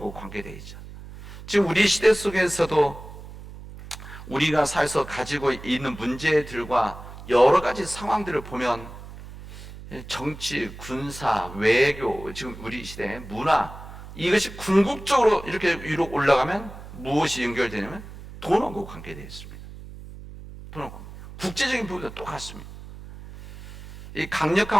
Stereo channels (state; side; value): noise; right; hum, 14 dB below the sound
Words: 관계되어 있죠. 지금 우리 시대 속에서도 우리가 살아서 가지고 있는 문제들과 여러 가지 상황들을 보면 정치, 군사, 외교, 지금 우리 시대 문화, 이것이 궁극적으로 이렇게 위로 올라가면 무엇이 연결되냐면 돈하고 관계되어 있습니다. 돈하고 국제적인 부분도 똑같습니다. 이